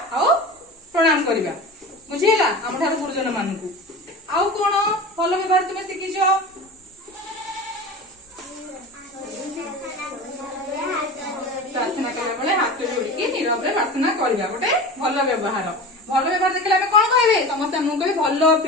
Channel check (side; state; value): both; normal; correlation 0.32